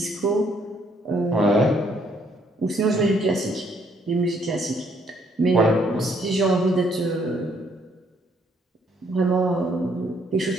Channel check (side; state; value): both; normal; correlation 0.68